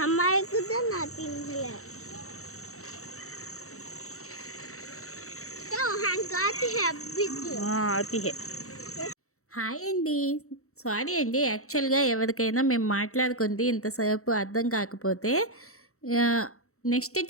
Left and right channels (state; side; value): late; right; 0.64 ms